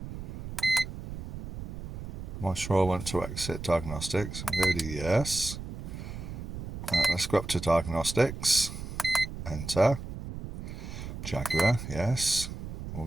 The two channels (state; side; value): noise; right; rumble, 8 dB below the sound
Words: Am I sure I want to exit Diagnostics? I'll go to yes. Let's go up to Diagnostics. Enter. Jaguar, yes. We'll